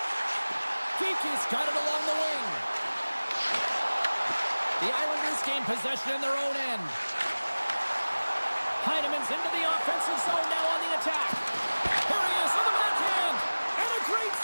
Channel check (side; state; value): both; inverted; correlation -1.00